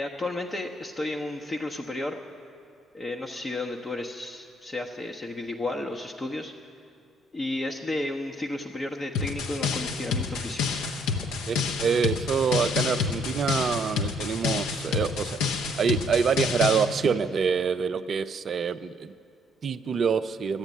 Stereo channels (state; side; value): normal; both; correlation 0.67